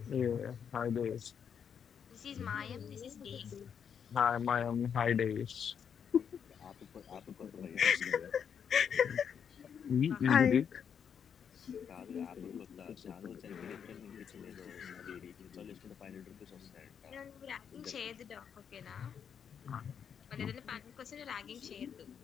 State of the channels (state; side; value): quieter; right; 7.6 dB